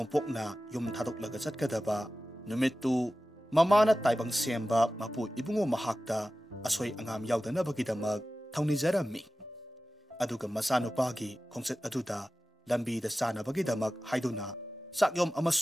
yum thadoklaga chatkadaba numittu mamana taibang semba mapu ibungo mahakta asoi angam yaudanabagidamak thaunijarammi. Aduga masanupagi khongset aduda lambida sanabagidamak haiduna sakyom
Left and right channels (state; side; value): normal; both; correlation 0.95